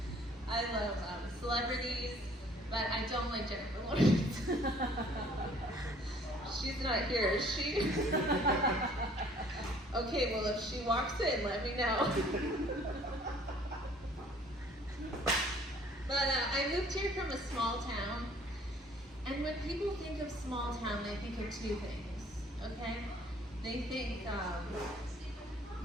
I love celebrities, but I don't like Jennifer Lawrence. She's not here, is she? Okay, well, if she walks in, let me know. But I moved here from a small town, and when people think of small town, they think of two things, okay? They think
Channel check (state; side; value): normal; both; correlation 0.56